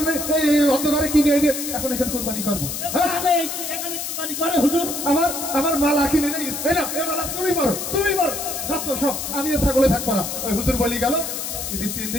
এই অন্ধকারে কিনে এনে এখন এখানে কোরবানি করবো? এখানে এখানে কুরবানি করে হুজুর। আমার মালা কিনে নেই, এই না, এই মালা তুমি মারো যত সব, আমি এ ছাগলে থাকবো না। ওই হুজুর বলি গেল 3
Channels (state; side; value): noise; left; hiss, 5 dB below the sound